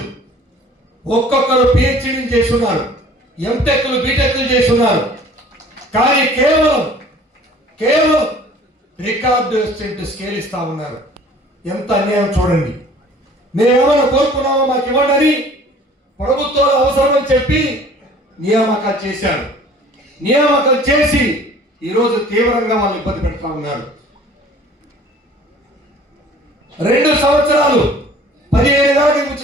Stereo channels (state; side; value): normal; both; correlation 0.50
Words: ఒక్కొక్కరు పిహెచ్డీలు చేస్తున్నారు, ఎంటెక్లు బీటెక్లు చేస్తున్నారు. కానీ కేవలం రికార్డు అసిస్టెంట్ స్కేల్ ఇస్తా ఉన్నారు. ఎంత అన్యాయం చూడండి. మేమేమైనా కోరుకున్నామో మాకు ఇవ్వండి, ప్రభుత్వాలు అవసరమని చెప్పి నియామకాలు చేశారు. నియామకాలు చేసి ఈరోజు తీవ్రంగా వాళ్ళు ఇబ్బంది పెడతా ఉన్నారు. 2 సంవత్సరాలు 15,000